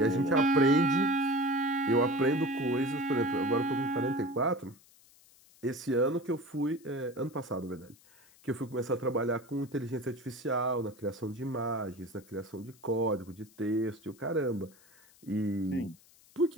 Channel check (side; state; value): left; noise; hiss, 27 dB below the sound